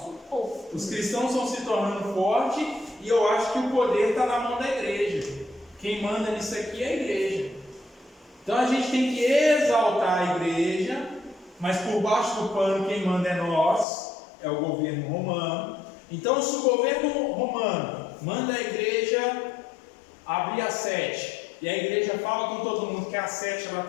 os cristãos estão se tornando fortes e eu acho que o poder está na mão da igreja. Quem manda nisso aqui é a igreja. Então a gente tem que exaltar a igreja, mas por baixo do pano quem manda é nós, é o governo romano. Então se o governo romano manda a igreja abrir a 7, e a igreja fala com todo mundo que a 7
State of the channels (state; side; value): drops out; right; at 13.9 s